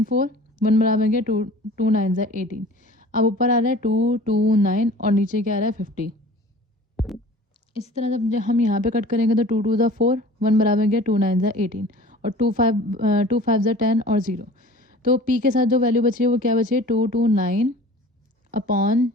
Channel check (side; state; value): both; normal; correlation 0.44